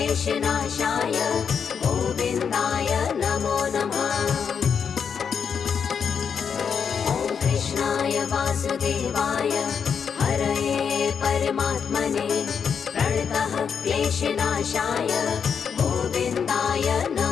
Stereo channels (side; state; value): right; quieter; 6.8 dB